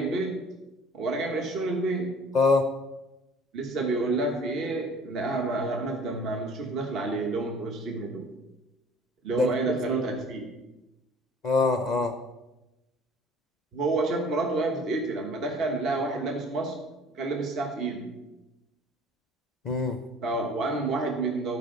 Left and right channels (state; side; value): normal; both; correlation 0.49